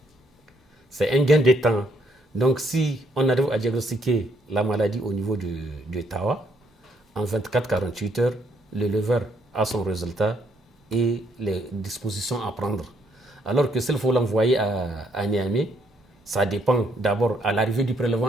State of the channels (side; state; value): both; normal; correlation 0.71